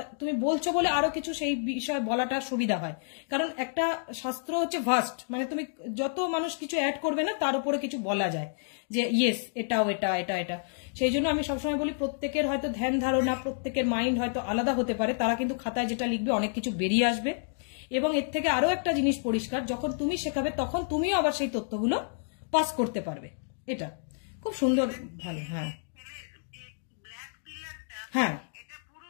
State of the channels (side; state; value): right; silent; digital silence